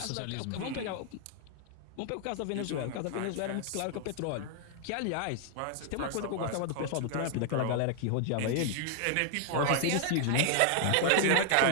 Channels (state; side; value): different; both; correlation 0.00